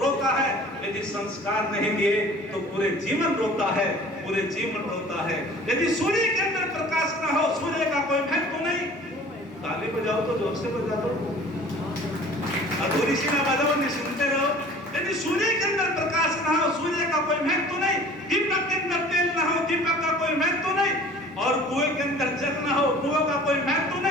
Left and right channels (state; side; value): normal; both; correlation 0.47